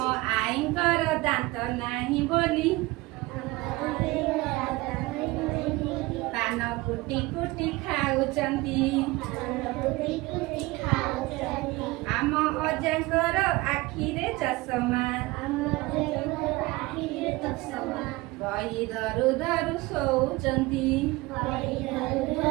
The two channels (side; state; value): left; quieter; 21.2 dB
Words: ଆଈଙ୍କର ଦାନ୍ତ ନାହିଁ ବୋଲି ପାନ କୁଟି କୁଟି ଖାଉଛନ୍ତି। ଆମ ଅଜାଙ୍କର ଆଖିରେ ଚଷମା, ବହି ଧରୁ ଧରୁ ଶୋଉଛନ୍ତି।